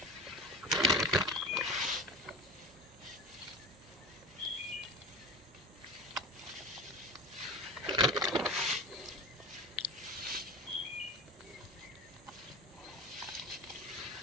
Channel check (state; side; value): normal; both; correlation 0.31